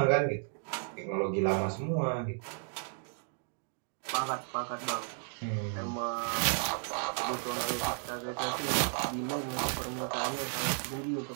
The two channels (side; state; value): left; silent; 55 dB below the other